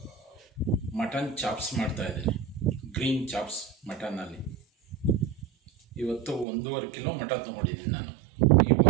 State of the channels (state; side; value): drops out; left; at 6.5 s